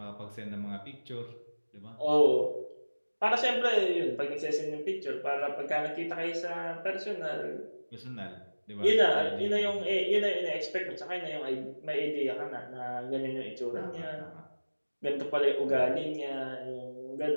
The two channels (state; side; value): inverted; both; correlation -1.00